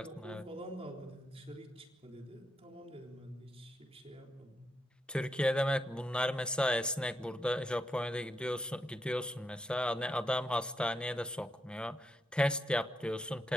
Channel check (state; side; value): normal; both; correlation 0.81